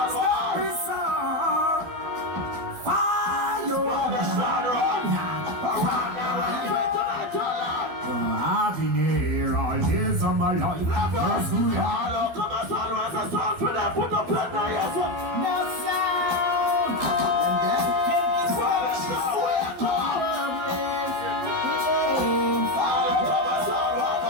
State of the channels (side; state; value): left; late; 12 ms